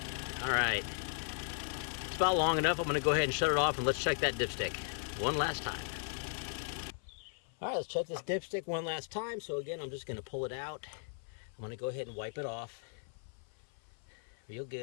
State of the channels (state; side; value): silent; right; 53 dB below the other